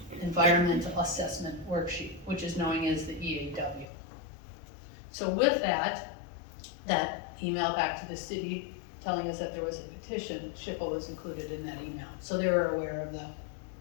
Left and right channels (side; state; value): right; drops out; at 3.9 s